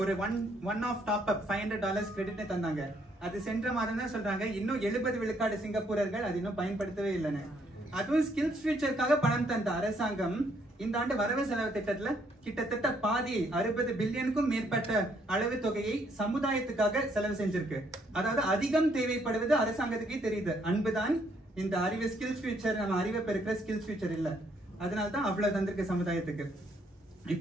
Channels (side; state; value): both; normal; correlation 0.70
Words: ஒரு one of top up $500 credit தந்தாங்க. அது சென்ற மாதம் தான் சொல்றாங்க. இன்னும் 70 விழுக்காடு சிங்கப்பூரர்கள் அது இன்னும் பயன்படுத்தவே இல்லைன்னு. அதுவும் ஸ்கில்ஸ் ஃபியூச்சருக்காக பணம் தந்த அரசாங்கம் இந்த ஆண்டு வரவு செலவு திட்டத்துல கிட்டத்தட்ட பாதி 60 பில்லியனுக்கும் மேற்பட்ட அளவு தொகையை சமுதாயத்துக்காக செலவு செஞ்சிருக்கு. அதாவது அதிகம் தேவைப்படுவது அரசாங்கத்துக்கே தெரியுது. அன்புதான் இந்த அறிவு ஸ்கில்ஸ் ஃபியூச்சர், நம்ம அறிவை பெருக்கிற ஸ்கில்ஸ் ஃபியூச்சர் இல்ல. அதனால்தான் அவ்வளவு தந்திருக்கு சமுதாயத்துக்கு.